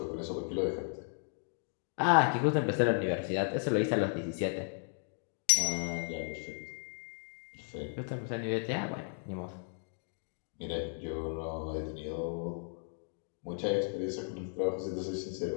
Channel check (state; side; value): silent; right; 54 dB below the other